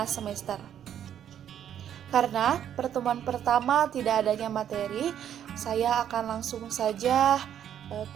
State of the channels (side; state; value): left; quieter; 9.9 dB